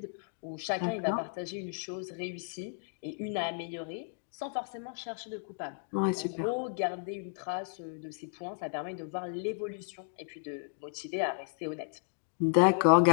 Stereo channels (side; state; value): right; silent; digital silence